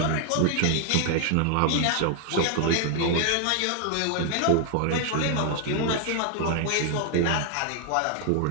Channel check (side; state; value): both; different; correlation 0.00